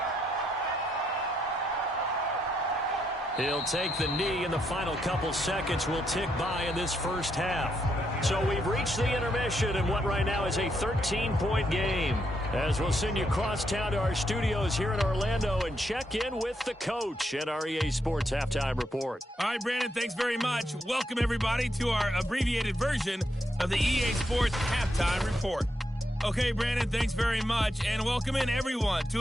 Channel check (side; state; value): both; normal; correlation 0.79